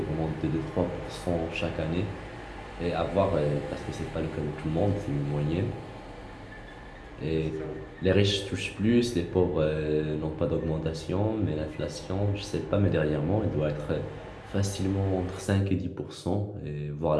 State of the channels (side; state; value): both; identical; correlation 1.00